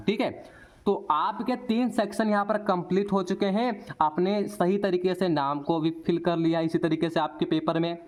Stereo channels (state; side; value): identical; both; correlation 1.00